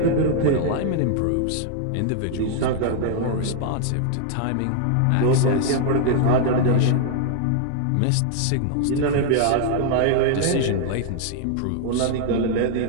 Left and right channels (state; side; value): different; both; correlation 0.00